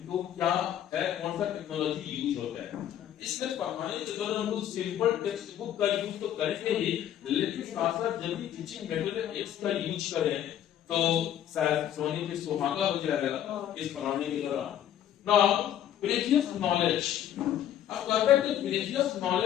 तो क्या है, कौन सा टेक्नोलॉजी यूज होता है। इसलिए पढ़ाने के दौरान हम लोग सिंपल टेक्स्ट बुक का यूज तो करेंगे ही, लेकिन साथ साथ जब भी टीचिंग मटेरियल एड्स का यूज करें तो शायद सोने पे सुहागा हो जाएगा इस पढ़ाने के दौरान। नाउ प्रीवियस नॉलेज, अब कहते हैं कि प्रीवियस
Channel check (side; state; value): right; quieter; 10.9 dB